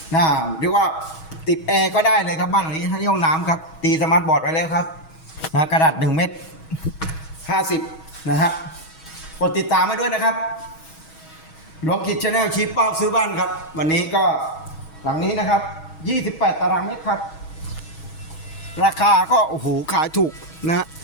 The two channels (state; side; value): late; right; 6.3 ms